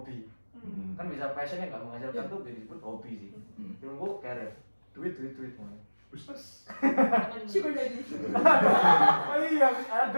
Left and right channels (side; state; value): both; inverted; correlation -1.00